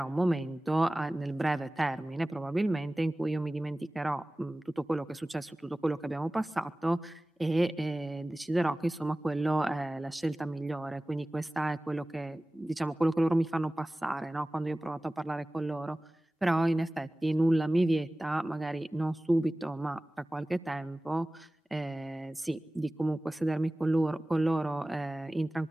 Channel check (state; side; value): normal; both; correlation 0.97